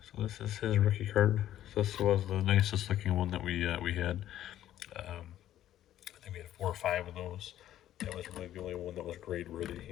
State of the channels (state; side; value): quieter; right; 12.4 dB